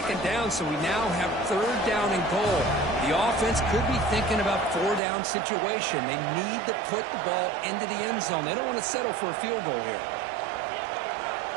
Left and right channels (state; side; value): drops out; left; at 5.0 s